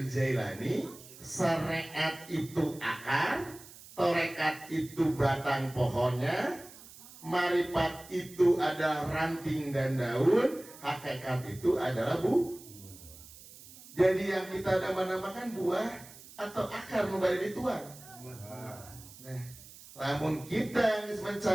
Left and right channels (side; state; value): right; noise; hiss, 19 dB below the sound